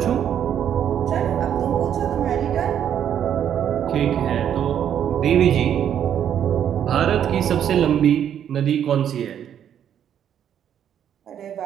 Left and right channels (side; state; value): left; quieter; 9.4 dB